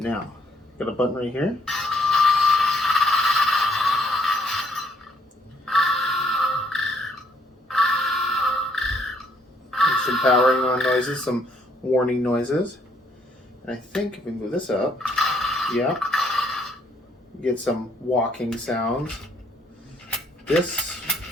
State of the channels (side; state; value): both; normal; correlation 0.67